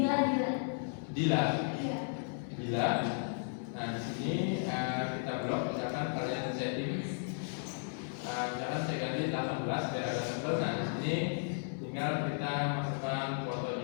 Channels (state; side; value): silent; right; digital silence